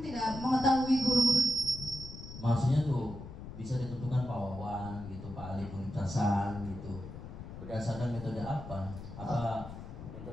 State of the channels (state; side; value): noise; left; rumble, 11 dB below the sound